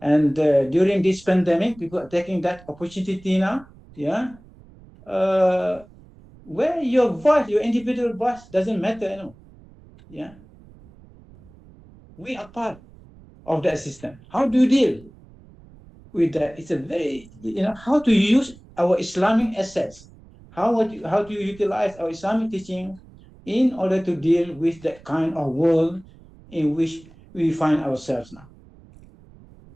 and during this pandemic, people are taking that opportunity now, where your voice, your individual voice doesn't matter anymore. We are part of that system. How do you deal with that? It's a very, how to use our Islamic assets. How do you utilize our Islamic teaching in order to deal with that kind of world in which we find ourselves now?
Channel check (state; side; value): noise; right; rumble, 24 dB below the sound